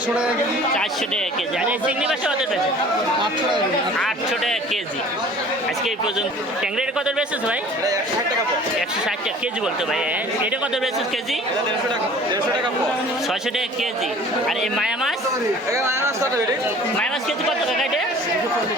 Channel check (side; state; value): both; normal; correlation 0.47